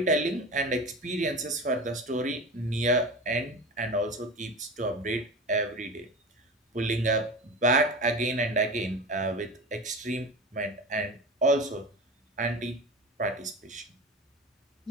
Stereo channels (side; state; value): both; normal; correlation 0.29